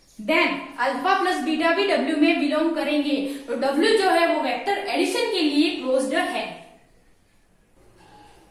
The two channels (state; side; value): identical; both; correlation 1.00